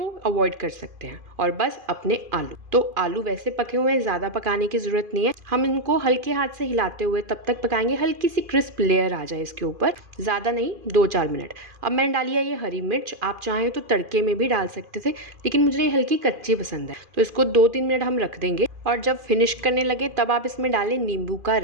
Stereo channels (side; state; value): left; late; 2.4 ms